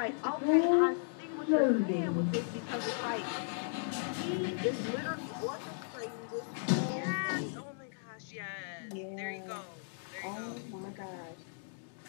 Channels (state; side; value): silent; right; digital silence